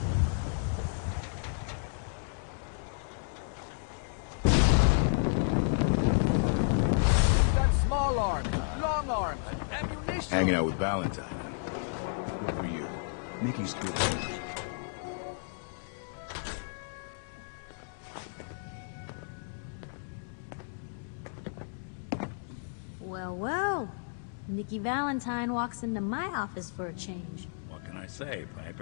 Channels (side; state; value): right; silent; digital silence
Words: We got small arms, long arms, ammunition. Hanging out with Valentine. What are you? Nikki's too. Well, well. Nikki Valentine walks into my office for a change. What can I say,